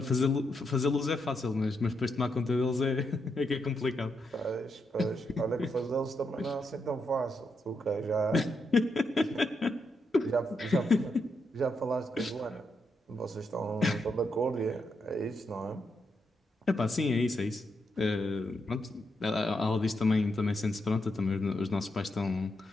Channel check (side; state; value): both; normal; correlation 0.82